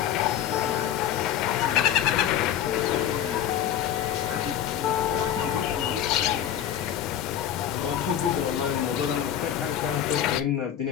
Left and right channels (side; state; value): right; quieter; 10.4 dB